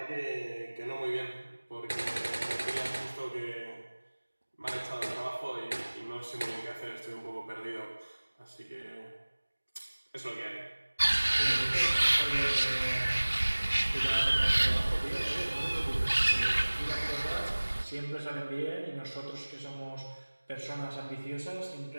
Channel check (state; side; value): inverted; both; correlation -1.00